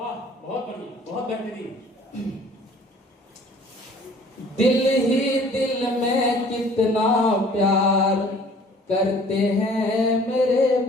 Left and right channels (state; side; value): normal; both; correlation 0.52